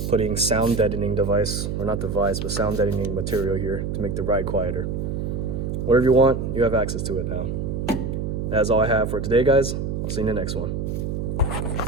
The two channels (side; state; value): right; noise; hum, 3 dB below the sound